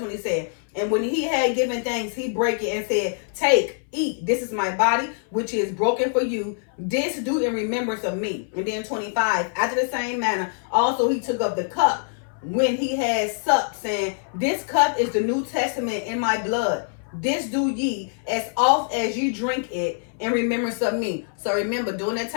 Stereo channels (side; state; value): right; silent; 62 dB below the other